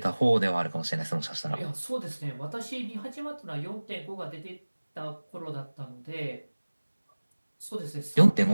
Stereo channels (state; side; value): inverted; both; correlation -1.00